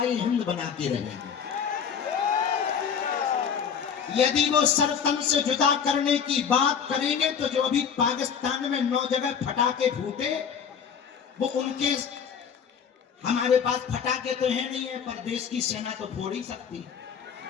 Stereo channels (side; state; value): right; quieter; 7.2 dB